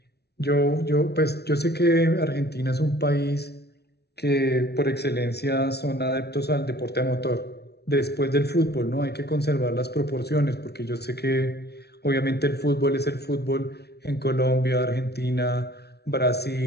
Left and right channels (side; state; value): right; late; 0.48 ms